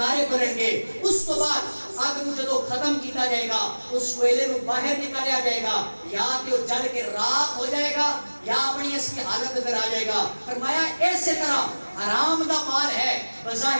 بلن گے اس تو بعد آگ نو جدو ختم کیتا جائے گا اس کوئلے نو باہر نکالیا جائے گا یا کہ وہ جل کے راکھ ہو جائے گا یا اپنی اس کی حالت اندر آ جائے گا فرمایا ایسے طرح حرام دا مال ہے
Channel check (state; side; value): inverted; both; correlation -1.00